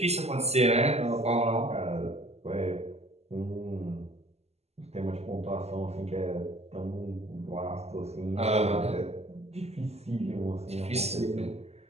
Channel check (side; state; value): left; late; 0.30 ms